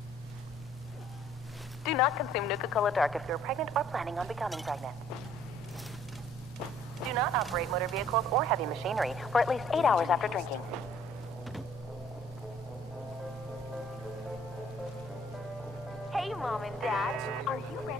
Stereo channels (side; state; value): both; normal; correlation 0.59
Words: Do not consume Nuka Cola Dark if you're pregnant or planning on becoming pregnant. Do not operate motor vehicles or heavy machinery for at least 8 hours after drinking. Hey, Mom and Dad, are you